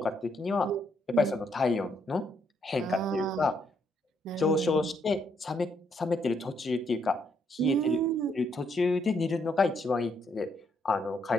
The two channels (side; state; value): both; normal; correlation 0.74